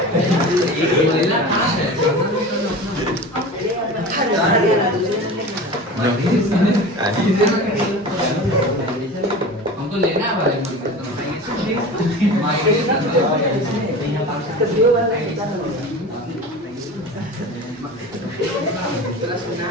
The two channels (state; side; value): normal; both; correlation 0.33